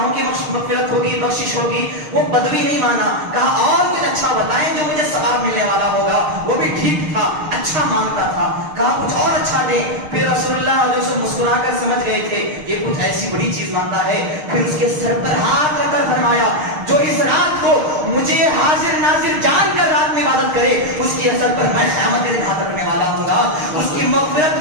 کی مغفرت ہوگی، بخشش ہوگی۔ وہ بدوی نہیں مانا، کہا اور کچھ اچھا بتائیں جو مجھے ثواب ملنے والا ہوگا۔ وہ بھی ٹھیک تھا، اچھا مانگتا تھا، کہا کچھ اور اچھا دے۔ پھر رسول اللہ جو سے مسکرا کر سمجھ گئے تھے یہ کچھ ایسی بڑی چیز مانگتا ہے، پھر اس کے سر پر ہاتھ رکھ کر فرمایا جو اس رات کو مجھے حاضر ناظر جان کر رات میں عبادت کرے اس کی اثر پر میں قیامت کے دن ہاتھ رکھنے والا ہوں گا، اس کی مغفرت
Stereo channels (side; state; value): left; late; 6.5 ms